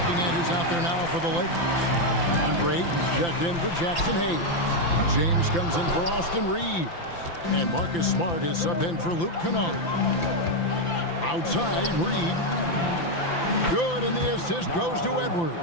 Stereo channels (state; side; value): late; right; 5.9 ms